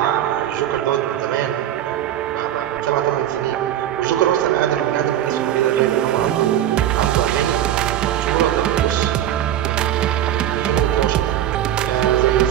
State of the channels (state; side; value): quieter; left; 11.5 dB